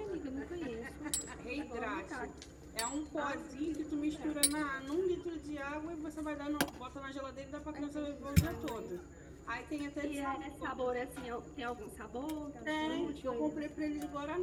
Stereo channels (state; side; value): identical; both; correlation 1.00